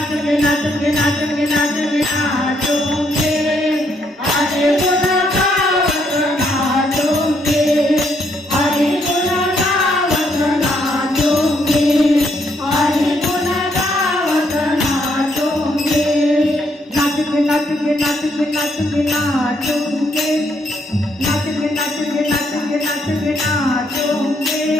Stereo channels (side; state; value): both; normal; correlation 0.73